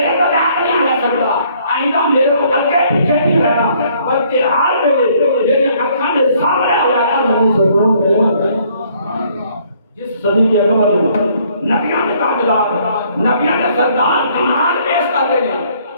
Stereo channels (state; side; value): inverted; both; correlation -0.63